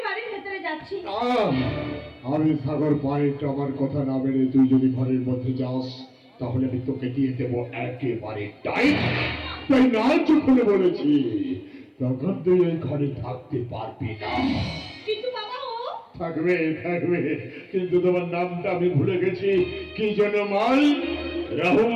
বাড়ির ভেতরে যাচ্ছি। আমি সাগর পয়েন্ট আমার কথা না মেনে তুই যদি ঘরের মধ্যে যাস তাহলে আমি তোকে দিয়ে দেবো একেবারে টাইট। তাই না চুপ বলেছি, তখন তুই এই ঘরে থাকতে পারবি না। কিন্তু বাবা ও থাকবে থাকবে, কিন্তু তোমার নামটা আমি ভুলে গেছি, কি যেন মাল?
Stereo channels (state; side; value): identical; both; correlation 1.00